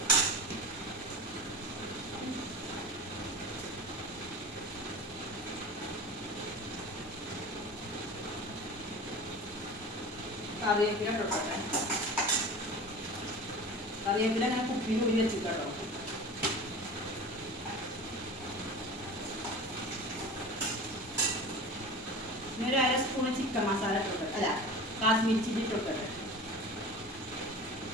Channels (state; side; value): normal; both; correlation 0.35